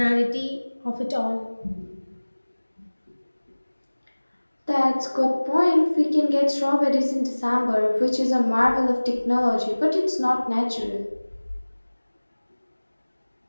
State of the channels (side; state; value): both; inverted; correlation -1.00